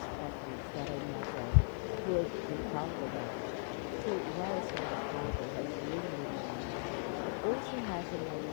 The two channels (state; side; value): silent; right; digital silence